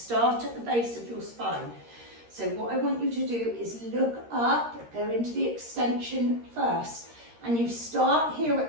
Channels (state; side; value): late; left; 13 ms